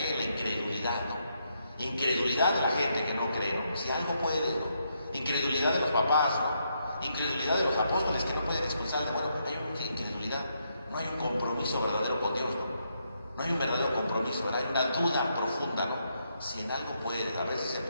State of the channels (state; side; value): inverted; both; correlation -0.78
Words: La incredulidad, ¿no? Incredulidad de la gente que no cree, ¿no? Si algo puede, ¿no? Incredulidad de los papás, ¿no? Incredulidad de los apóstoles que no pueden expulsar al demonio. Hay una incredulidad, no hay un compromiso verdadero con Dios, ¿no? No hay un verdadero compromiso, ¿verdad? Hay una duda profunda, ¿no? Si en algo puede, a veces se